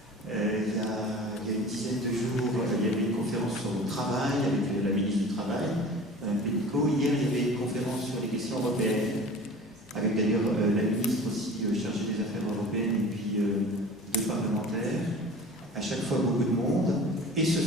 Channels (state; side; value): normal; both; correlation 0.40